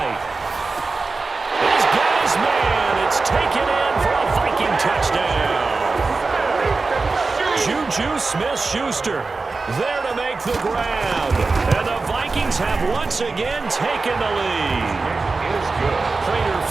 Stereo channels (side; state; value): left; quieter; 3.9 dB